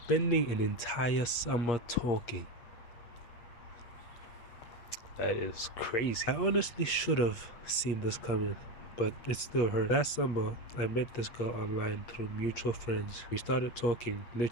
an entire summer talking. That is crazy. I honestly should have seen this coming, but it still hurt. Last summer, I met this girl online through mutual friends. We started talking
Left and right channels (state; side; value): late; right; 8.5 ms